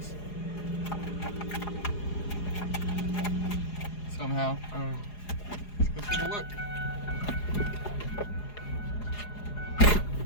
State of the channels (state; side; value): late; right; 4.8 ms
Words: Somehow. Let's go take a look.